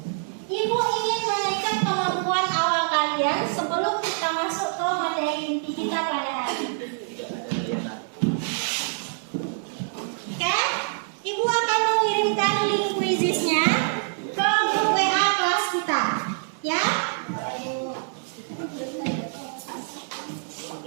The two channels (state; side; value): silent; left; 61 dB below the other